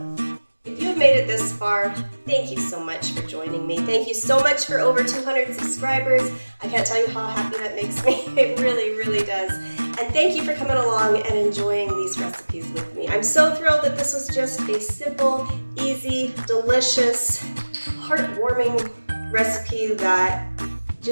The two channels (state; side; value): inverted; both; correlation -1.00